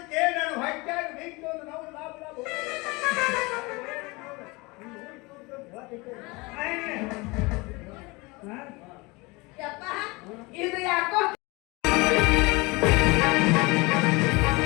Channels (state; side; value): quieter; right; 25.1 dB